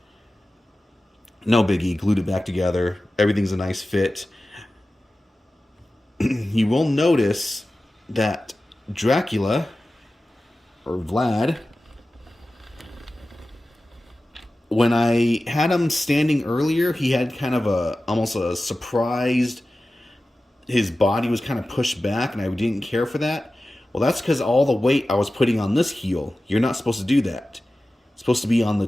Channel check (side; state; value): both; normal; correlation 0.95